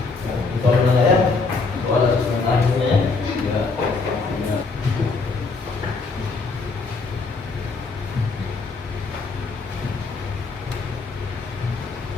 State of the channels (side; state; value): right; quieter; 4.1 dB